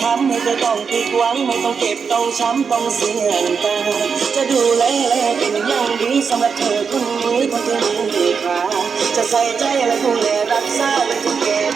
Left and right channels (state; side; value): quieter; left; 5.9 dB